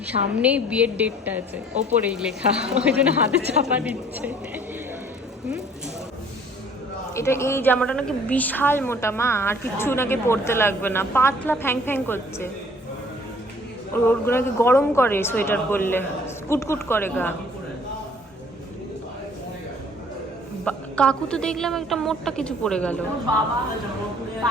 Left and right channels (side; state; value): both; normal; correlation 0.55